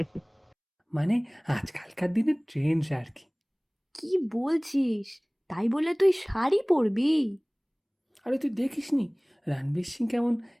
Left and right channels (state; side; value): identical; both; correlation 1.00